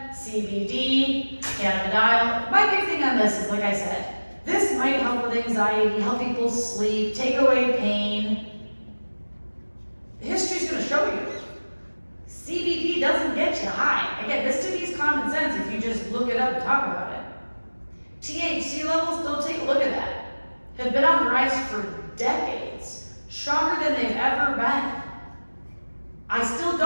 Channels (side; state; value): both; inverted; correlation -1.00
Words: CBD, cannabidiol. My big thing on this is, like I said, this might help with anxiety, help people sleep, take away pain. History's going to show you. CBD doesn't get you high. Again, this to me is common sense if you just look it up and talk about it. THC levels, go take a look at that, have been on the rise for decades, stronger than they've ever been. I still